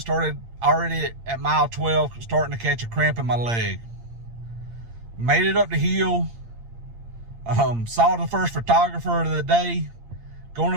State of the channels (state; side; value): late; left; 8.7 ms